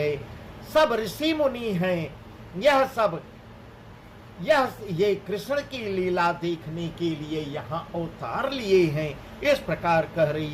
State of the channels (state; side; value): identical; both; correlation 1.00